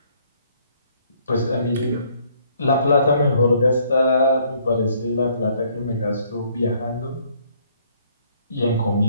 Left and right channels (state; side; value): inverted; both; correlation -0.65